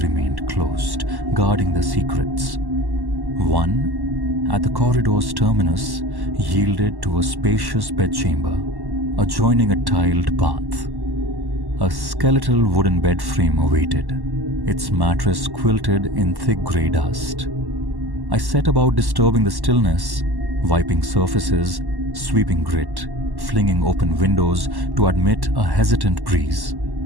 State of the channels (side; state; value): left; late; 1.1 ms